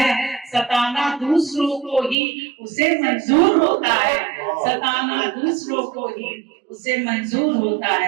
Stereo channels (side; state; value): left; drops out; at 2.1 s